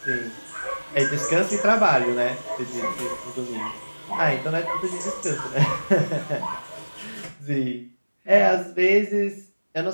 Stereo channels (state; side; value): inverted; both; correlation -1.00